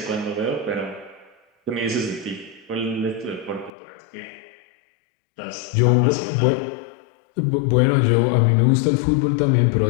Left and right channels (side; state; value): right; drops out; at 3.7 s